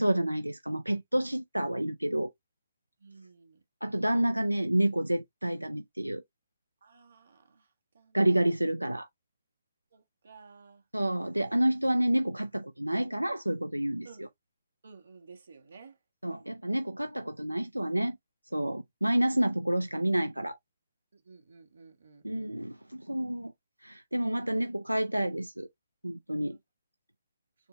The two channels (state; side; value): inverted; both; correlation -0.99